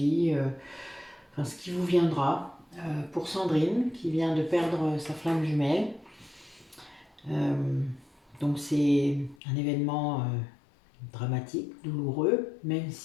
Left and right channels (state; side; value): drops out; right; at 9.3 s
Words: enfin ce qui vous viendra pour Sandrine qui vient de perdre sa flamme jumelle. Euh, donc c'est un événement dramatique, douloureux, même